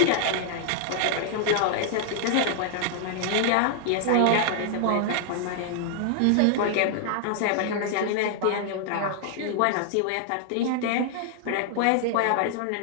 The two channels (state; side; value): different; both; correlation -0.01